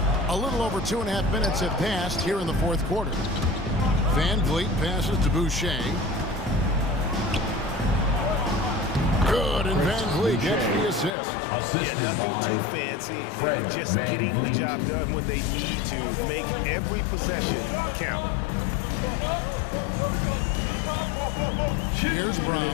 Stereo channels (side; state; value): right; drops out; at 11.1 s